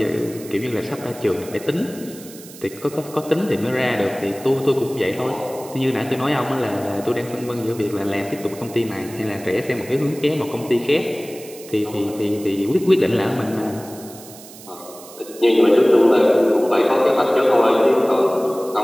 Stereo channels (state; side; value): noise; right; hiss, 18 dB below the sound